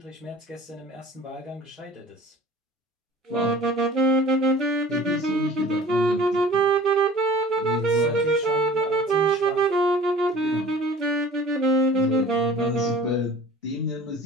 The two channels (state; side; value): normal; both; correlation 0.45